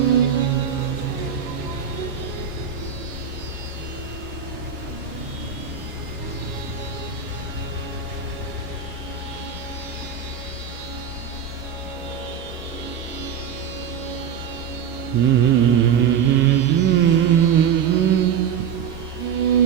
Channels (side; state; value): left; quieter; 7.6 dB